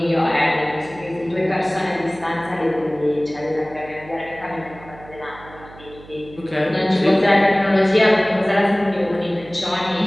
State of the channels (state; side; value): noise; right; hum, 20 dB below the sound